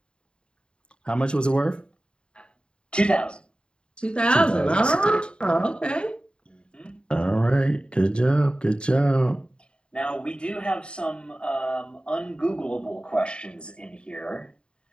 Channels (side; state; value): right; late; 0.053 ms